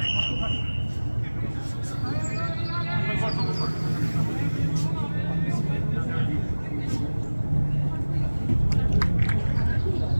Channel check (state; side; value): inverted; both; correlation -1.00